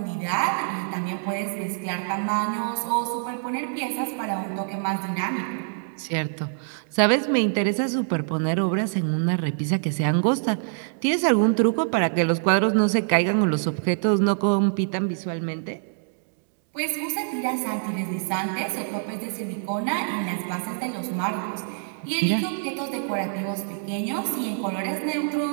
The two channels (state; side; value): silent; left; digital silence